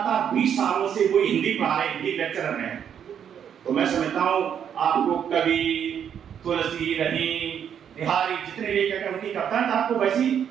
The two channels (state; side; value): quieter; left; 8.6 dB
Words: 20 सालों से कोई हिंदी पढ़ा रहे, हिंदी लेक्चरर हैं, तो मैं समझता हूँ आपको कवि, तुलसी, रहीम, बिहारी जितने भी उनकी कविताएं आपको वैसी